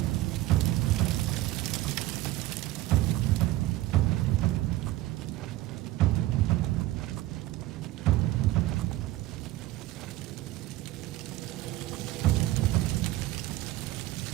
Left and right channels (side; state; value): left; quieter; 16.4 dB